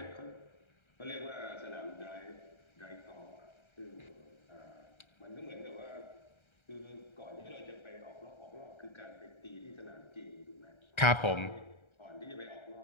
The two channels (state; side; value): late; right; 1.3 ms